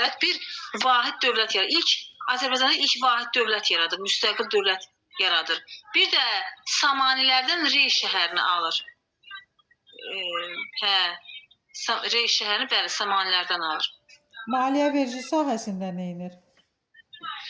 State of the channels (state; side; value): identical; both; correlation 1.00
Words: bir vahid dövlət yaradır. Azərbaycanda ilk vahid dövlət yaradır, müstəqil dövlət yaradır. Bir də Samanilərdən Rey şəhərini alır. Rey şəhərini bəli Samanilərdən alır. Maliyyə vergi sahəsində nə edir?